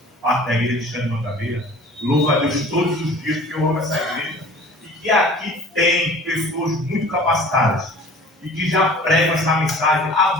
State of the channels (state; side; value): normal; both; correlation 0.45